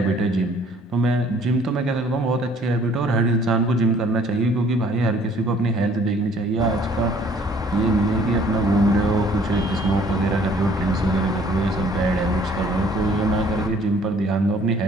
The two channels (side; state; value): both; normal; correlation 0.58